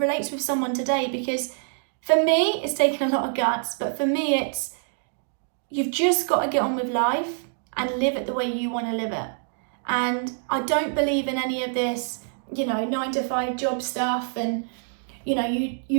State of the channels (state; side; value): silent; left; digital silence